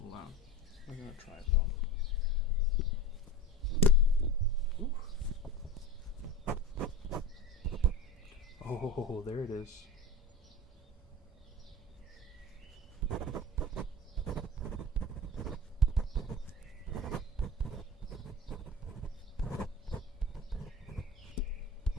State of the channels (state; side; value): normal; both; correlation 0.30